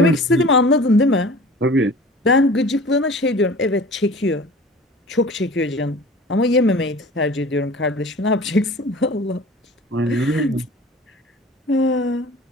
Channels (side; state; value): both; normal; correlation 0.42